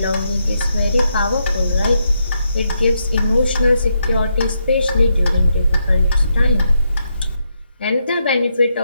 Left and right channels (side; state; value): both; inverted; correlation -0.81